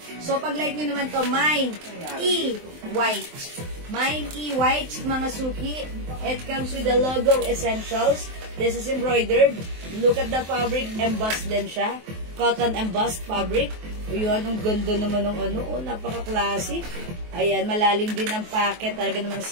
So, pag like nyo naman to, Mine E white. Mine E white, mga suki. It comes with the logo essentials. This is embroidered. Look at the fabric. Embossed din siya. Cotton embossed fabric. Yun, ang ganda naman ng napaka-classic. Ayan, malalim din ang packet. Talaga namang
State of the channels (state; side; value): late; left; 23 ms